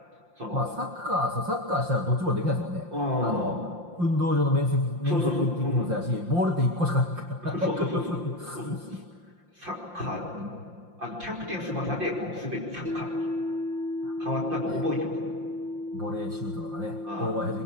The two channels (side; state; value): left; late; 5.7 ms